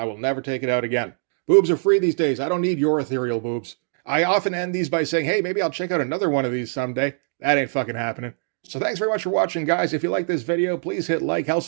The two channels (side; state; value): left; silent; digital silence